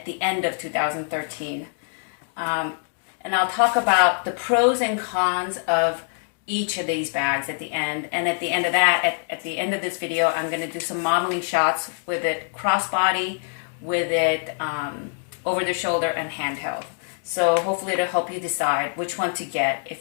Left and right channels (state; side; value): silent; right; 62 dB below the other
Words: the end of 2013. And I'll talk about the pros and cons of each of these bags at the end. And at the end of that, at the end of this video, I'm going to do some modeling shots with it crossbody, with it over the shoulder and handheld. So hopefully it'll help you decide which one to get